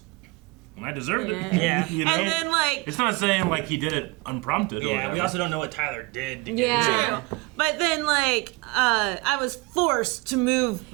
deserved it. Yeah. You know? And then, like, It's not saying like he did it unprompted. Or Yeah, whatever. we also don't know what Tyler did. To Yeah. Get but then, like, I was forced to move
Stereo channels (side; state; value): left; quieter; 24.0 dB